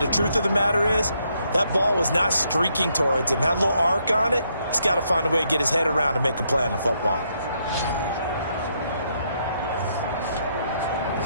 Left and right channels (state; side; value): inverted; both; correlation -0.75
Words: the truth of the matter is, that ball was not streaking towards him. Had a little arc on it. He's got to find a way to get his head around and make a play on the football.